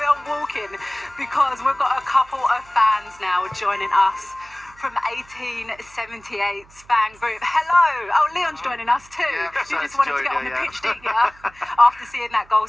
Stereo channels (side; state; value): right; noise; hum, 26 dB below the sound